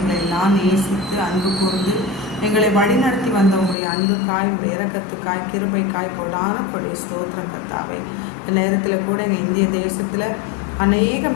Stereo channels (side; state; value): right; drops out; at 3.8 s